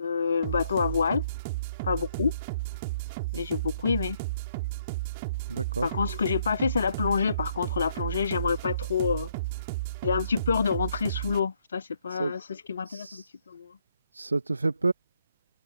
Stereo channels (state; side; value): inverted; both; correlation -0.69